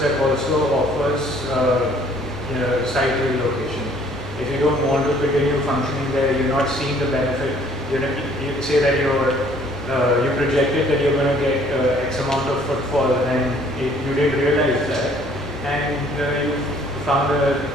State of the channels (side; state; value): both; normal; correlation 0.58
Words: also offers site relocation. If you don't want to continue functioning there, you're not seeing the benefit. You say that you projected that you're going to get X amount of footfall, and you didn't realize that, and you found